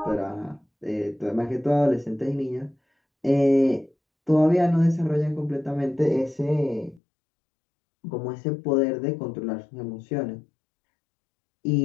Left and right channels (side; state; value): right; drops out; at 7.0 s